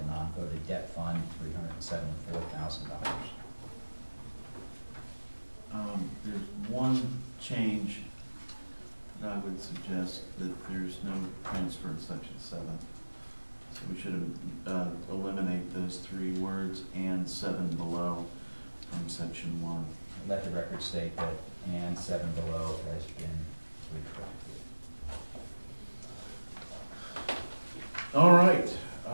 non-voted debt fund, $374,000. There's one change that I would suggest, that there's no transfer in Section 7. So we should eliminate those 3 words and 7 below from Section 1. Let the record state that and 7 below has been retracted. All right.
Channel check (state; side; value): inverted; both; correlation -1.00